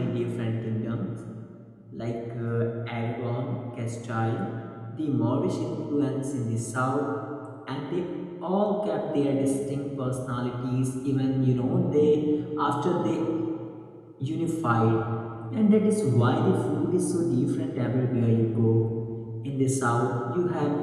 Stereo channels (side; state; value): both; identical; correlation 1.00